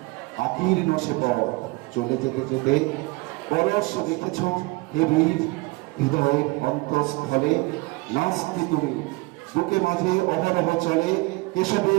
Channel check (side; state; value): left; quieter; 24.6 dB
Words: আকীর্ণ সে পথ চলে যেতে যেতে পরশ রেখেছ হে বীর হৃদয়ের অন্তঃস্থলে। নাস্তি তুমি বুকে মাঝে অহরহ চলে